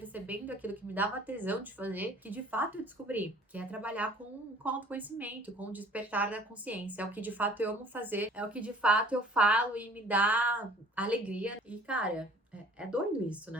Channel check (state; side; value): normal; both; correlation 0.51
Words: aquilo que me dava tesão de fazer, que de fato eu descobri, que é trabalhar com autoconhecimento, com o despertar da consciência. É o que de fato eu amo fazer, é o que de fato eu falo e me dá alegria. E, cara, é doido isso,